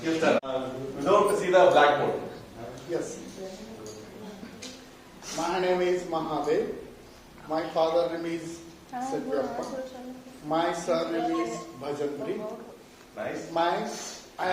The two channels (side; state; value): both; identical; correlation 1.00